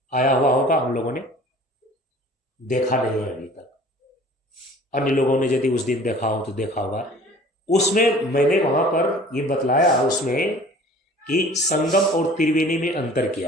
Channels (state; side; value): normal; both; correlation 0.48